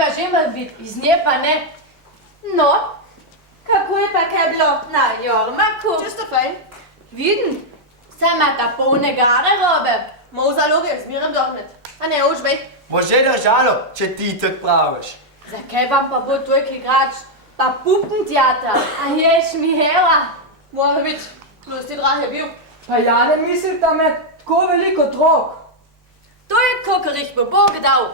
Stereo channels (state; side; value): normal; both; correlation -0.02